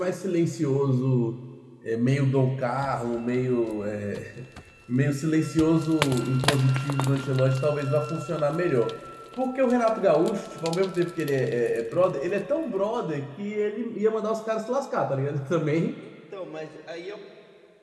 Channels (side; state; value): both; identical; correlation 1.00